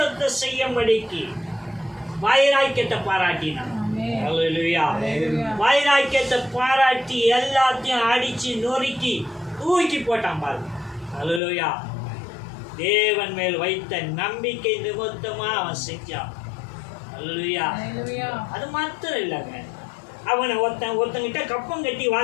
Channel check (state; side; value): drops out; right; at 11.4 s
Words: செய்யும்படிக்கு வைராக்கியத்தை பாராட்டினான். வைராக்கியத்தை பாராட்டி எல்லாத்தையும் அடிச்சு நொறுக்கி தூக்கி போட்டான் பாருங்க. அல்லேலூயா. தேவன் மேல் வைத்த நம்பிக்கை நிமித்தமா அவன் செஞ்சான். அல்லேலூயா. அது மாத்திரம் இல்லைங்க, அவனை ஒருத்தங்கிட்ட கப்பம் கட்டி